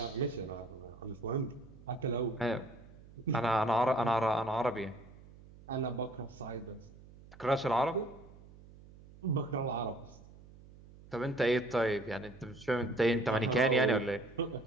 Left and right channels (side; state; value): right; noise; hum, 21 dB below the sound